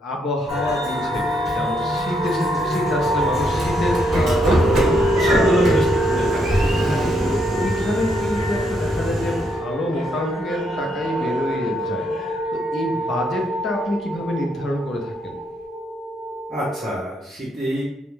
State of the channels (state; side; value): normal; both; correlation 0.75